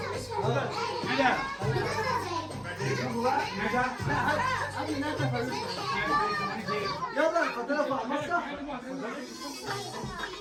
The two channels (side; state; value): both; identical; correlation 1.00